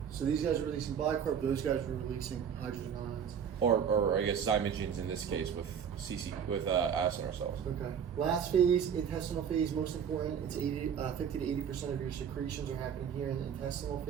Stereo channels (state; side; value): quieter; left; 7.8 dB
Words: So these guys are releasing bicarb, those guys are releasing hydrogen ions. Or I guess zymogens in this case with acinar cells. Okay. Last phase, intestinal phase, most important. It's 50 to 80% of your secretions are happening here in the intestinal